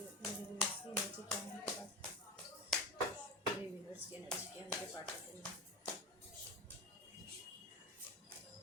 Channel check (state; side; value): normal; both; correlation 0.24